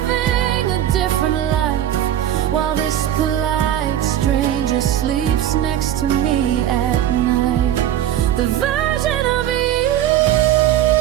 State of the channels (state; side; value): quieter; left; 11.6 dB